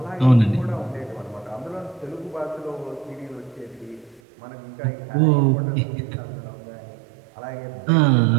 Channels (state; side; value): drops out; left; at 4.2 s